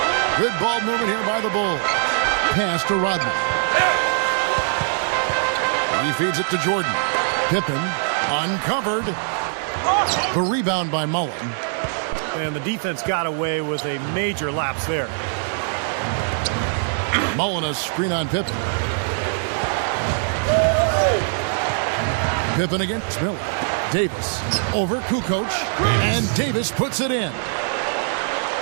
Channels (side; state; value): left; silent; digital silence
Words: Good ball movement here by the Bulls. Pass to Rodman. He feeds it to Jordan. Pippen uncovered. The rebound by Mullen. And the defense got away with a major lapse there. Mullen a screen on Pippen. Pippen against Miller. Davis over Kukoc, and Davis puts it in.